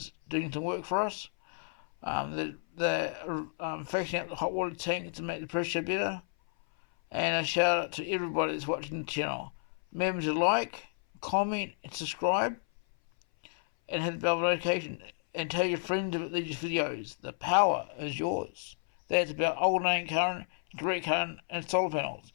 doing some work for us. They're fixing up the hot water tank to make the pressure better. And a shout out to everybody that's watching the channel. Remember to like, comment and subscribe, and hit the bell notification, and tell your friends about these videos. The power is yours. That's about alternating current, direct current, and solar panels.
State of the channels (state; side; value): silent; right; 57 dB below the other